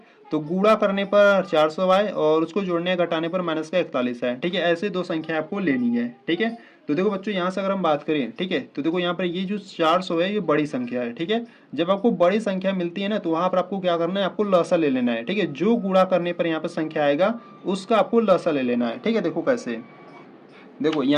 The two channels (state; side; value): identical; both; correlation 1.00